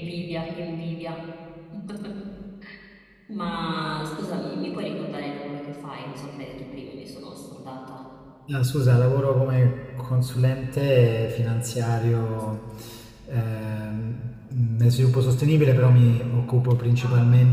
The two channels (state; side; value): identical; both; correlation 1.00